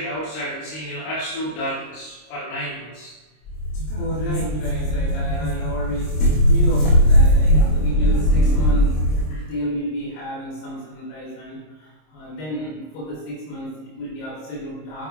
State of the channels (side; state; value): right; late; 26 ms